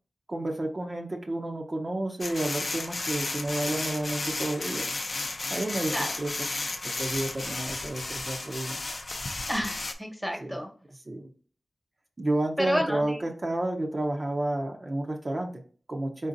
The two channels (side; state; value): both; normal; correlation 0.96